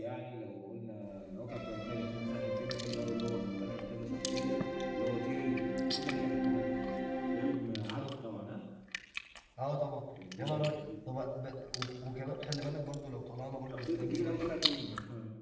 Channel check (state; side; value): identical; both; correlation 1.00